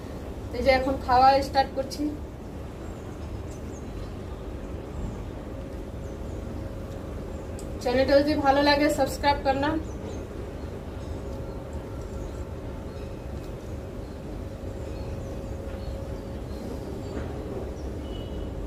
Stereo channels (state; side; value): identical; both; correlation 1.00